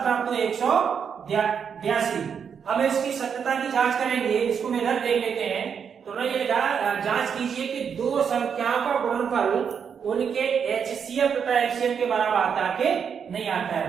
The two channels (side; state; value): left; quieter; 7.1 dB